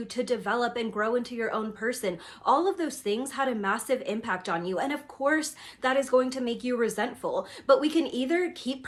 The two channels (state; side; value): identical; both; correlation 1.00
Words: to develop and grow into your own person. All of those things had a massive impact on you. And of course, that is going to make you resentful. But we can either keep